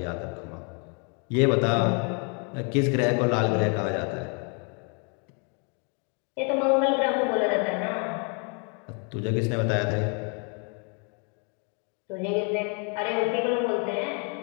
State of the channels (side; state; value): right; quieter; 37.4 dB